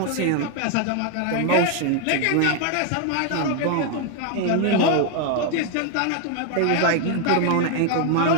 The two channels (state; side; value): different; both; correlation 0.01